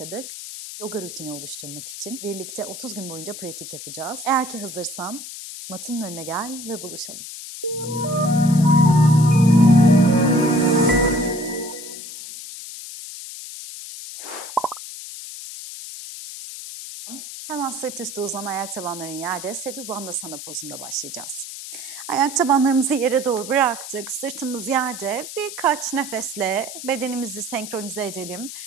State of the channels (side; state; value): left; noise; hiss, 11 dB below the sound